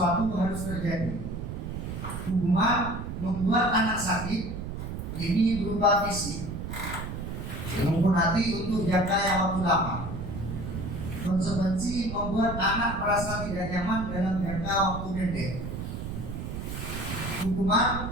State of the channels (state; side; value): noise; right; rumble, 6 dB below the sound